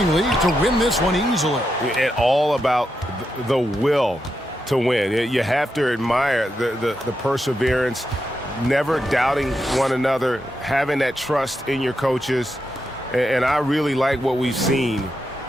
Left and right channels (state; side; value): normal; both; correlation 0.85